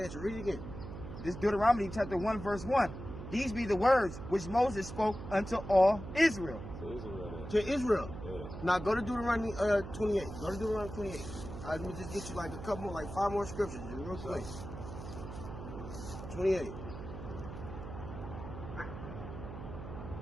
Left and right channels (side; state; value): right; noise; hum, 10 dB below the sound